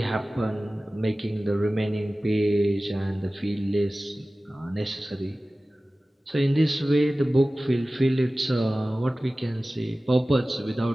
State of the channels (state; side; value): normal; both; correlation 0.97